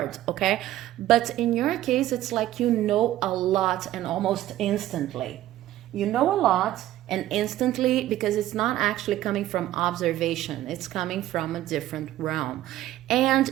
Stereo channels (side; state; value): left; quieter; 14.1 dB